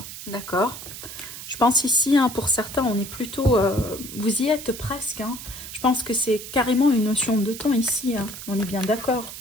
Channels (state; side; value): noise; right; hiss, 11 dB below the sound